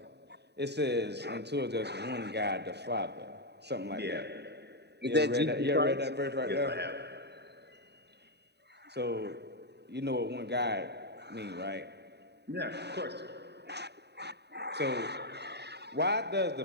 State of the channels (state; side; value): late; left; 0.49 ms